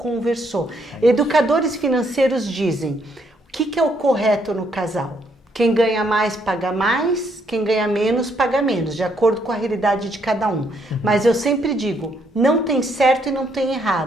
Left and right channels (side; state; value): both; normal; correlation 0.72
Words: Educadores financeiros dizem, o que é o correto no casal? Quem ganha mais, paga mais. Quem ganha menos, paga menos. De acordo com a realidade de cada um. Mas eu sempre digo, não tem certo e não tem